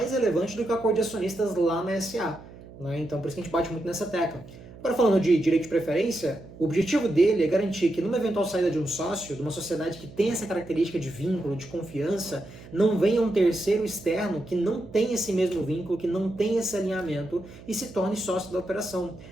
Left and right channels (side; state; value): right; noise; hum, 18 dB below the sound